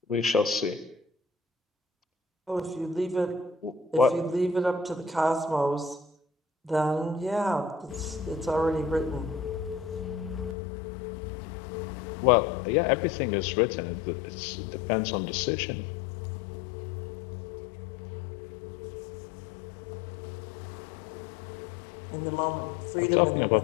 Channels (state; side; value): drops out; right; at 10.6 s